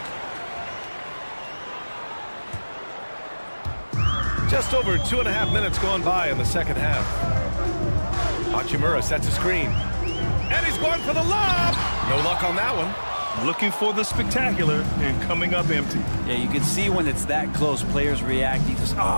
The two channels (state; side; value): inverted; both; correlation -1.00